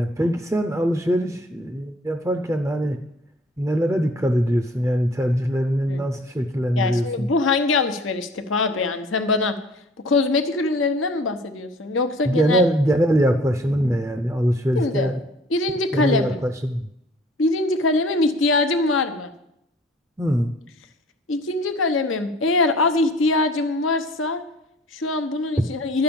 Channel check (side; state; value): both; normal; correlation 0.51